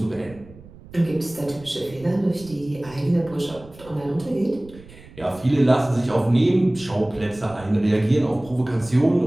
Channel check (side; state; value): right; noise; rumble, 21 dB below the sound